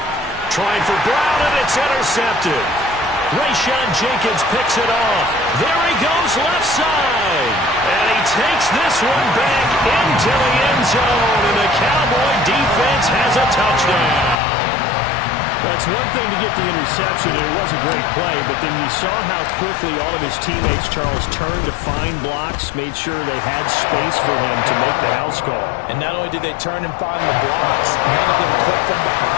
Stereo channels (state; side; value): drops out; right; at 14.4 s